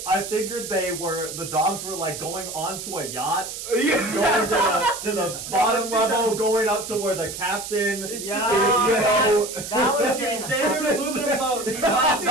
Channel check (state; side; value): noise; right; hiss, 8 dB below the sound